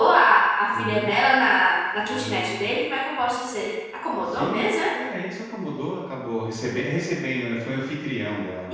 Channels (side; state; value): both; identical; correlation 1.00